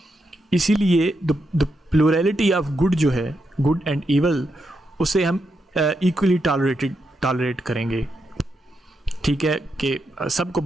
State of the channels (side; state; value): both; normal; correlation 0.83